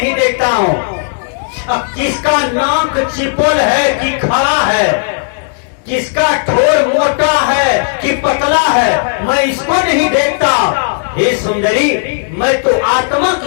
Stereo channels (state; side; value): silent; right; digital silence